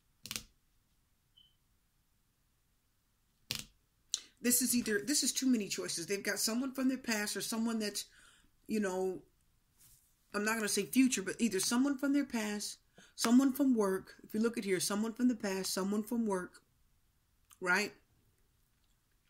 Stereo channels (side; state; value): both; identical; correlation 1.00